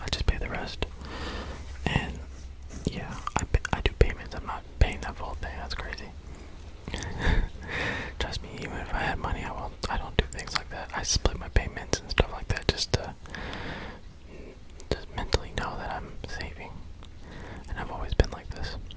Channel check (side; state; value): both; identical; correlation 1.00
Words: I just pay the rest, and yeah, I do payments. I'm not paying that full thing. That's crazy. Trust me, even if I had money, I don't do things like that. I split my payments and stuff like that just to mentally know that I'm saving, and I've always been like this.